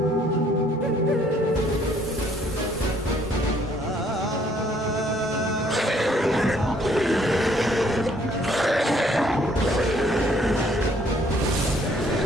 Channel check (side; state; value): both; normal; correlation 0.64